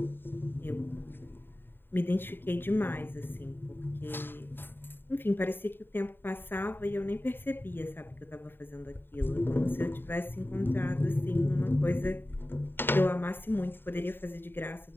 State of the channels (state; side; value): late; right; 0.098 ms